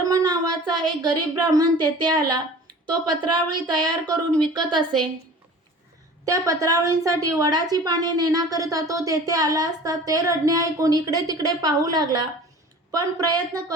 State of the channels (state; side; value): normal; both; correlation 0.42